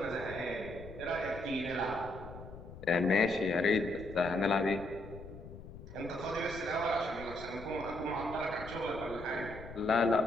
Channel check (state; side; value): noise; left; rumble, 14 dB below the sound